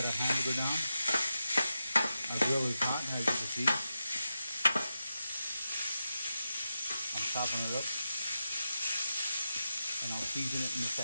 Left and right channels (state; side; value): inverted; both; correlation -0.89